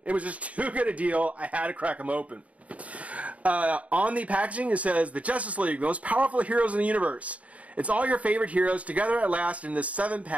It was just too good a deal. I had to crack them open. On the packaging, it says, the Justice League, the most powerful heroes in the universe. It's all your favorite heroes together at last in this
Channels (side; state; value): left; late; 0.067 ms